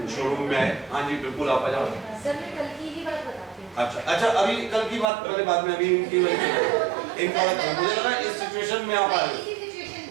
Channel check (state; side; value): drops out; left; at 5.1 s